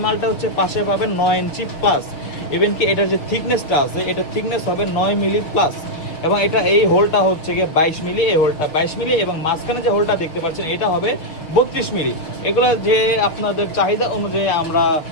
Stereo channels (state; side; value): late; right; 6.6 ms